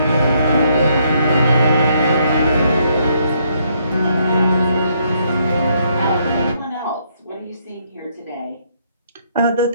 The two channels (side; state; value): both; inverted; correlation -0.72